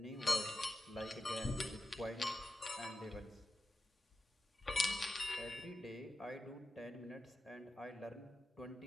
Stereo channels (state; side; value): normal; both; correlation 0.91